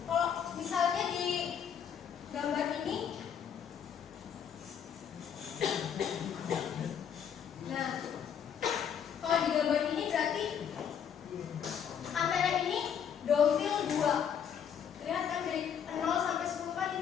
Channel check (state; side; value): quieter; right; 8.1 dB